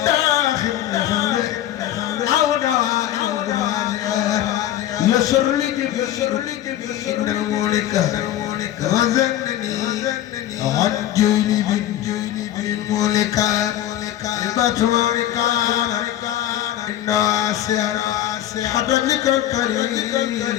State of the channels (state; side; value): quieter; right; 12.3 dB